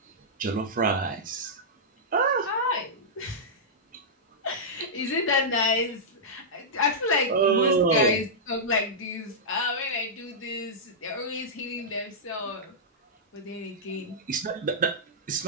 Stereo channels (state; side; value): normal; both; correlation -0.12